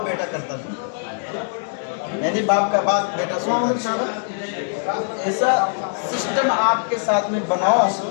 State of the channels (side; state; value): right; silent; digital silence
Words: बेटा करता है, यानी बाप का बात बेटा सुनता है। ऐसा सिस्टम आपके साथ में बनाओ